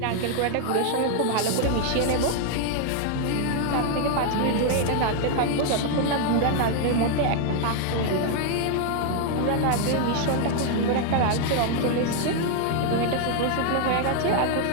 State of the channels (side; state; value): both; different; correlation 0.00